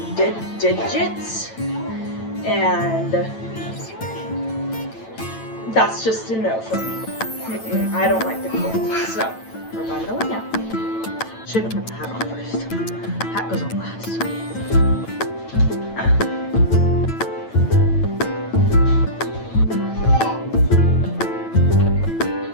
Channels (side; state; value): right; late; 9.0 ms